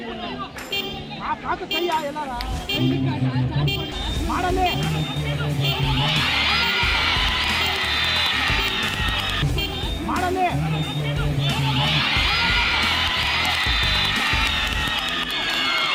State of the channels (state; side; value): identical; both; correlation 1.00